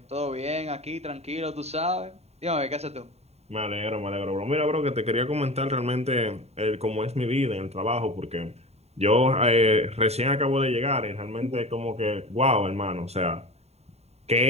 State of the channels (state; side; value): late; left; 0.31 ms